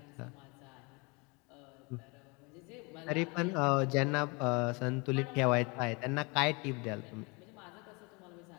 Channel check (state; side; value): quieter; right; 28.8 dB